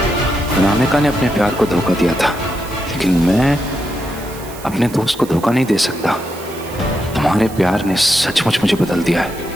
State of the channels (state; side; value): noise; right; hiss, 17 dB below the sound